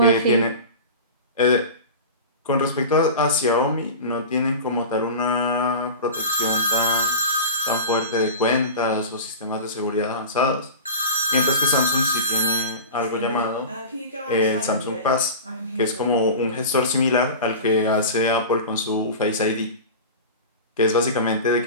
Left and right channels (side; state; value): both; inverted; correlation -0.32